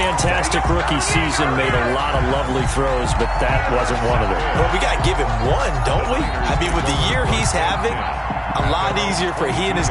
rookie season, made a lot of lovely throws, but that wasn't one of them. Well, we got to give him one, don't we? I mean, with the year he's having, a lot easier for he and his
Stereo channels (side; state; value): both; identical; correlation 1.00